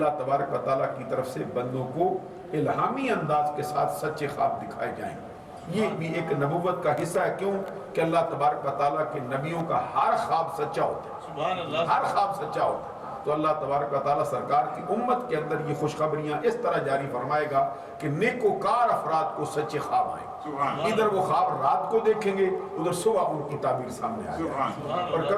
تبارک و تعالیٰ کی طرف سے بندوں کو الہامی انداز کے ساتھ سچے خواب دکھائے جائیں. یہ بھی ایک نبوت کا حصہ ہے. کیوں کہ اللہ تبارک و تعالیٰ کے نبیوں کا ہر خواب سچا ہوتا ہے، ہر خواب سچا ہوتا ہے. تو اللہ تبارک و تعالیٰ سرکار کی امت کے اندر یہ خوشخبریاں اس طرح جاری فرمائے گا کہ نیکوکار افراد کو سچے خواب آئیں. ادھر وہ خواب رات کو دیکھیں گے، ادھر صبح ان کی تعبیر سامنے آ جائے گی. اور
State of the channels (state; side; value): identical; both; correlation 1.00